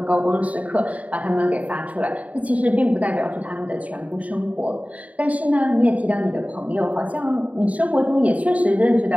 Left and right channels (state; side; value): late; left; 0.069 ms